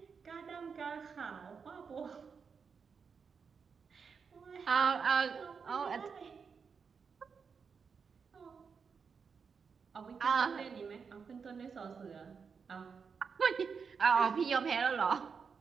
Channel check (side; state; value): left; quieter; 5.8 dB